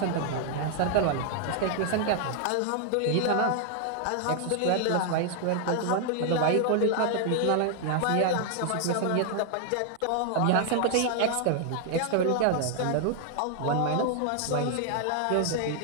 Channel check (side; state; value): both; different; correlation 0.00